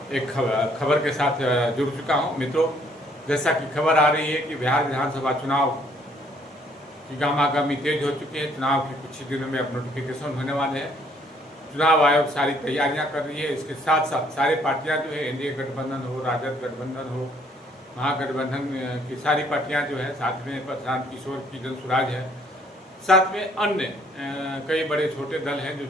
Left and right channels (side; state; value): both; normal; correlation 0.63